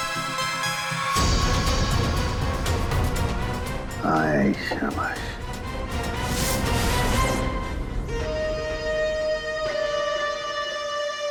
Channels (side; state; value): both; identical; correlation 1.00